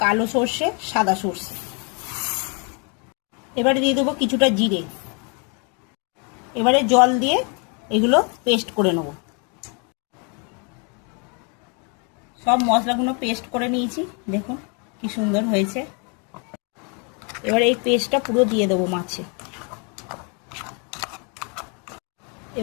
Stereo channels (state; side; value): quieter; right; 35.7 dB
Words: কালো সর্ষে, সাদা সর্ষে, এবারে দিয়ে দেবো কিছুটা জিরে। এবারে জল দিয়ে এগুলো পেস্ট করে নেব। সব মশলাগুলো পেস্ট করে নিয়েছি, দেখুন কি সুন্দর হয়েছে। এবারে এই পেস্টটা পুরো দিয়ে দেবো মাছে।